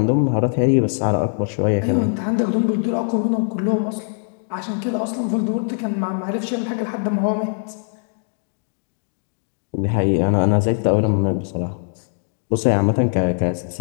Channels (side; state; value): right; silent; digital silence